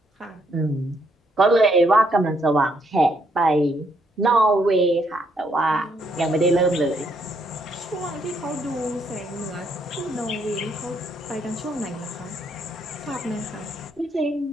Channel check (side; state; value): both; normal; correlation 0.72